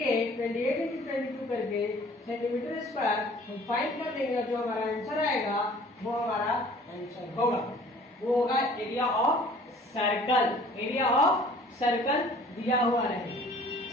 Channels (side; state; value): both; normal; correlation 0.51